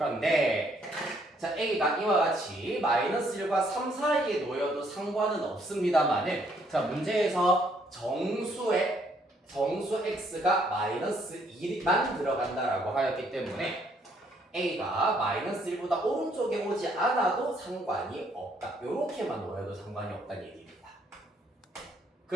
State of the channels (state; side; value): normal; both; correlation 0.68